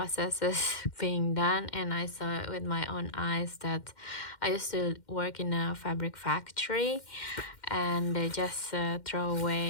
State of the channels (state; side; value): late; right; 2.1 ms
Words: being done, and I saw it with my own eyes. That I used to work in a fabric factory, and they just throw